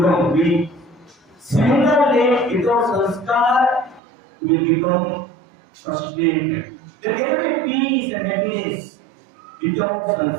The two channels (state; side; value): drops out; left; at 4.0 s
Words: weak. Similarly, without sanskar, it will become frustrated. There cannot be peace and happiness without